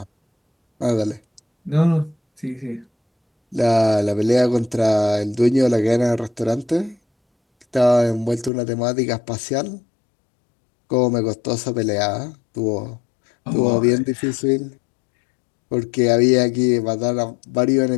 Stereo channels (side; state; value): right; drops out; at 8.5 s